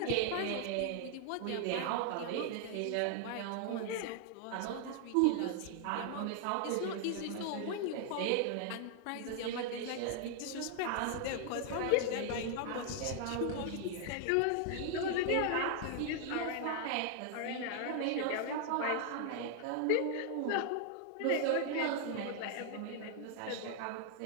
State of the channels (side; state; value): both; different; correlation 0.00